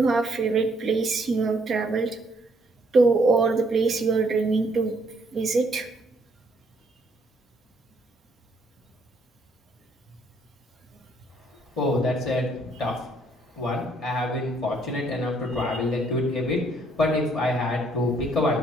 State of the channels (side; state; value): both; normal; correlation 0.67